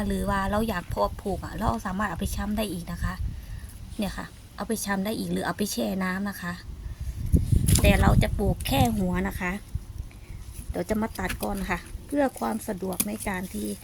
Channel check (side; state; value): both; identical; correlation 1.00